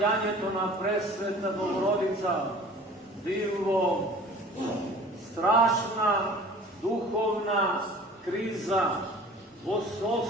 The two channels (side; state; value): both; normal; correlation 0.45